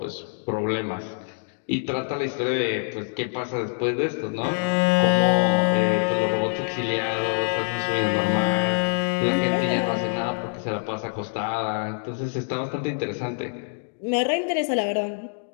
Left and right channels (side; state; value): right; silent; digital silence